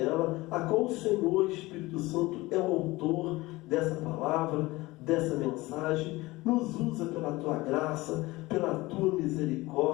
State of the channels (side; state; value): right; quieter; 20.5 dB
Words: a qual o Senhor, Espírito Santo, é o autor dessa palavra, dessa mensagem. Nos usa pela Tua graça, pela Tua